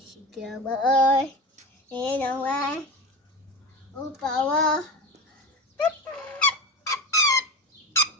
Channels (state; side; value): normal; both; correlation 0.25